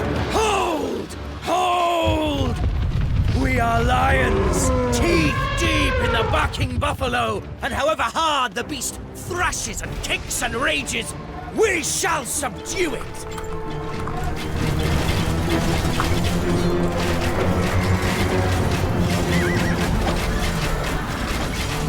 Buffalo, and however hard the beast thrashes and kicks and rages, we shall subdue it!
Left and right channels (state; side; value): identical; both; correlation 1.00